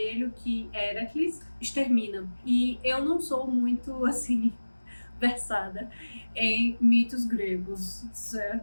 que Heracles extermina. E eu não sou muito, assim, versada em mitos gregos,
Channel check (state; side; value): inverted; both; correlation -1.00